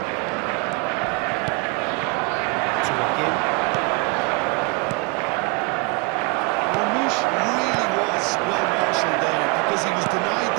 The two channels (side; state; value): left; quieter; 29.8 dB